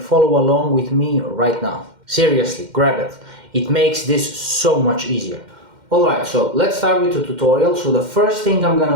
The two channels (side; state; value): left; late; 2.1 ms